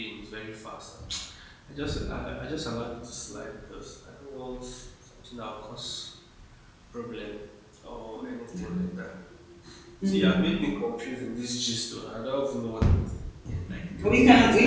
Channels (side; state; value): both; identical; correlation 1.00